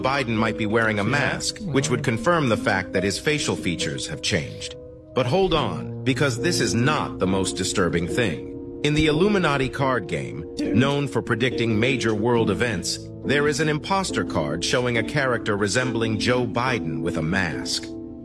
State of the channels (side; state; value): both; identical; correlation 1.00